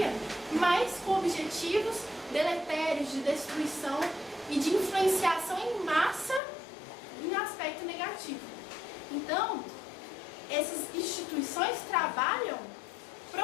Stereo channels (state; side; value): drops out; right; at 6.4 s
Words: mas com objetivos deletérios de destruição e de influenciação em massa em aspecto negativo. Então, essas instituições trabalham